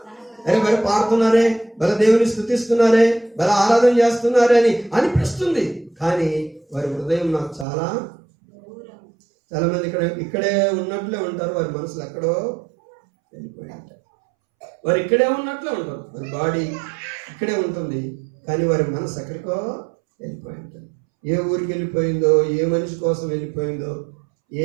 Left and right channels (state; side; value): drops out; left; at 7.7 s